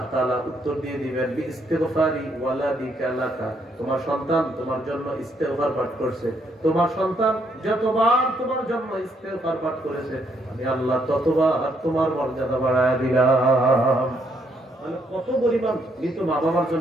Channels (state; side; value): normal; both; correlation 0.72